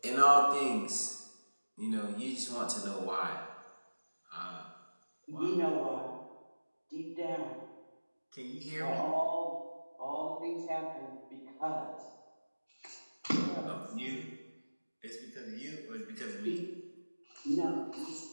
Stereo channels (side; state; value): both; inverted; correlation -1.00